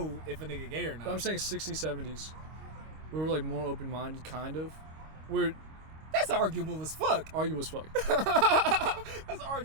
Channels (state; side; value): late; left; 25 ms